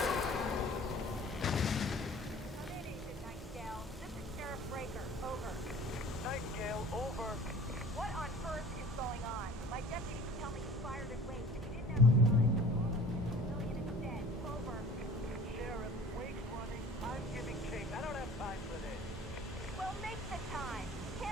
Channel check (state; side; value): normal; both; correlation 0.47